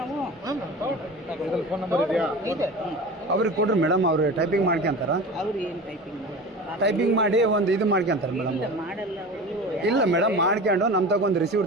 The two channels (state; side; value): normal; both; correlation 0.33